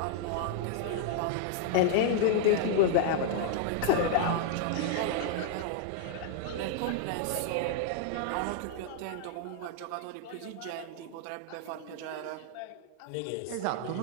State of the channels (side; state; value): both; different; correlation 0.00